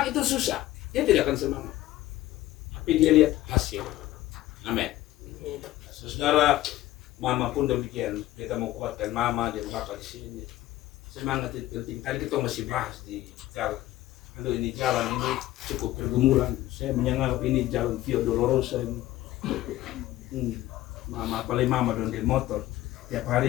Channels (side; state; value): right; quieter; 15.6 dB